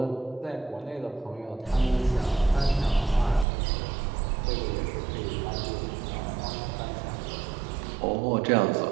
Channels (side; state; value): left; drops out; at 3.5 s